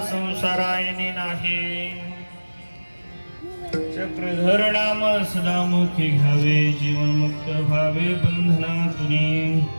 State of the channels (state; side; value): inverted; both; correlation -1.00